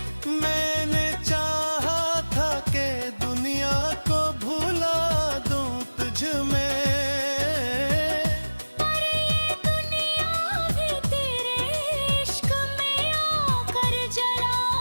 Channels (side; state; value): both; inverted; correlation -1.00